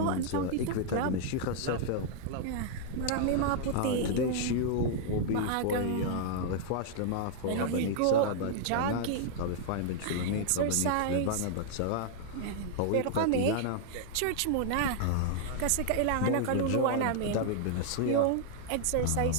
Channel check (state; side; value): different; both; correlation -0.01